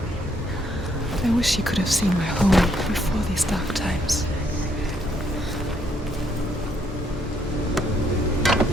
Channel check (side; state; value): both; normal; correlation 0.71